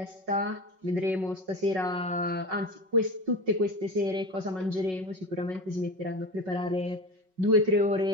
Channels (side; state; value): left; late; 5.4 ms